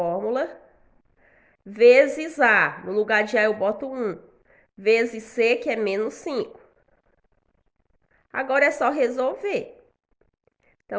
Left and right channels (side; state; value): both; identical; correlation 1.00